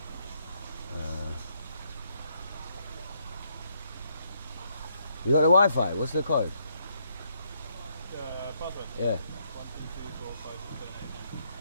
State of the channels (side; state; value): both; inverted; correlation -0.74